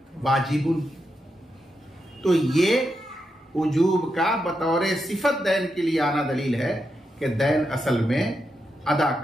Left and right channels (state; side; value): normal; both; correlation 0.85